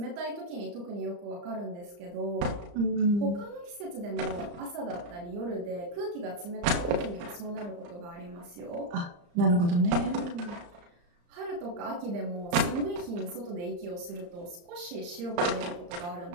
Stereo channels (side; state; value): left; late; 34 ms